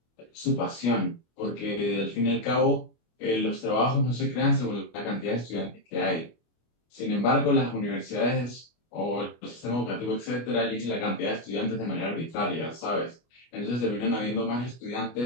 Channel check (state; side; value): late; right; 25 ms